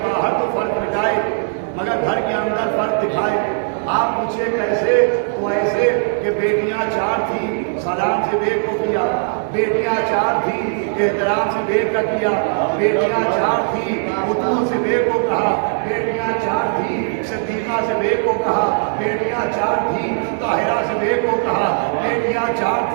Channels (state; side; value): silent; left; digital silence